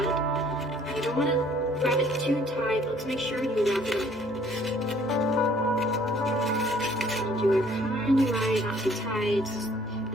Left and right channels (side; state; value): both; normal; correlation 0.58